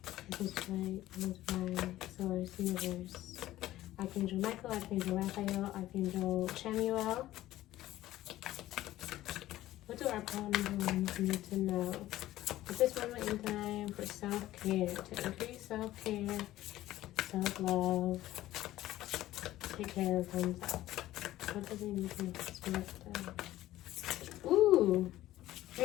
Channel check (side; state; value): right; quieter; 15.1 dB